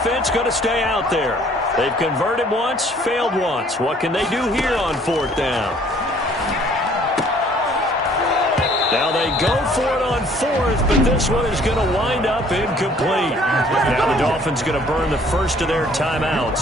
going to stay out there. They've converted once, failed once. What can they do here on fourth down? Now they go for it on fourth, but this one is going to wind up incomplete. Now the Dolphins going to burn the first of their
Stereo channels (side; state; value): both; normal; correlation 0.58